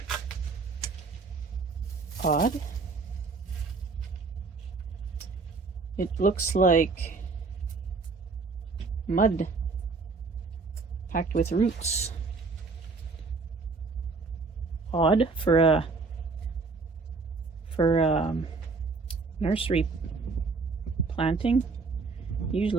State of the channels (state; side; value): quieter; left; 4.3 dB